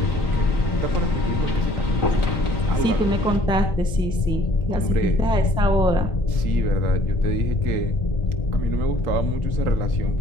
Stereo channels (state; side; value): normal; both; correlation 0.57